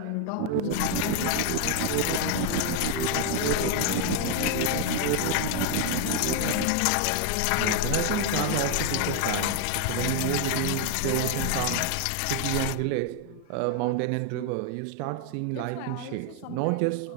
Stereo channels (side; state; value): both; different; correlation 0.01